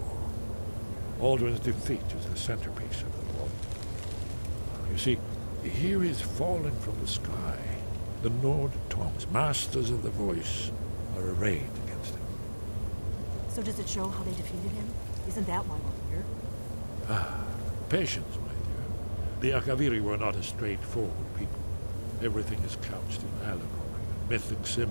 Alduin's defeat is the centerpiece of the war. You see, here is fallen from the sky. The Nord tongues, masters of the voice, are arrayed against him. So does it show how they defeated him? Isn't that why we're here? Patience, my dear. The Akaviri were not a straightforward people. Everything is couched in allegory and mythic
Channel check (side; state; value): both; inverted; correlation -1.00